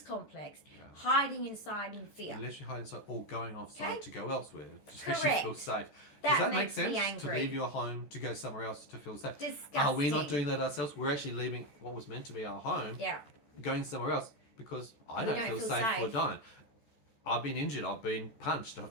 complex hiding inside in fear. Literally hiding inside or going offside to go elsewhere to Correct. feel safe. That Does that make makes me sense? angry. To leave your home to go somewhere else to feel safe? Disgusting. Are we not doing that ourselves? We're actually leaving what was meant to be our home, going somewhere else because I don't feel safe for Dyan. I've been injured, I've been punched,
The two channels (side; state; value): right; late; 14 ms